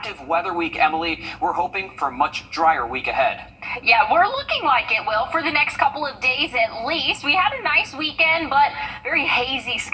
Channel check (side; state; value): both; identical; correlation 1.00